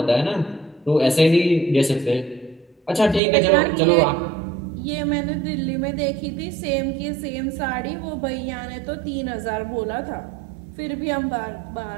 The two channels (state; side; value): drops out; left; at 3.2 s